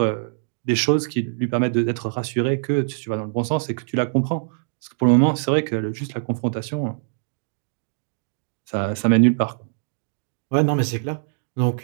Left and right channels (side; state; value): left; silent; digital silence